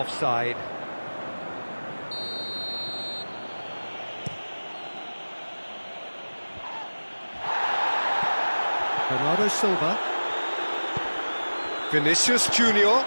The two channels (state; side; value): inverted; both; correlation -1.00